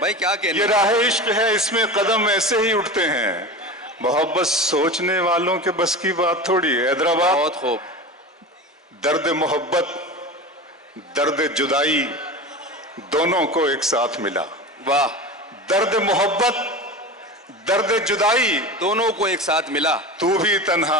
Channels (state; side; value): normal; both; correlation 0.29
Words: भाई, क्या कहने। ये राह इश्क है, इसमें कदम ऐसे ही उठते हैं। मोहब्बत सोचने वालों के बस की बात थोड़ी है। हैदराबाद, बहुत खूब। दर्द मोहब्बत, दर्द जुदाई दोनों को एक साथ मिला। वाह। दर्द मोहब्बत, दर्द जुदाई दोनों को एक साथ मिला। तू भी